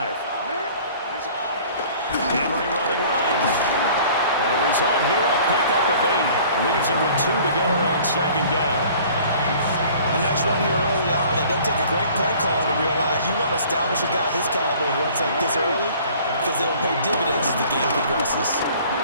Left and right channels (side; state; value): both; inverted; correlation -0.50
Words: Henry running right. And the result here, a pickup of 8. Leaves him with 2 to go on second down. A nice run here early on. It doesn't take a great play call to realize you want to establish a guy of his caliber who runs like this early because they'll pay dividends as the game progresses.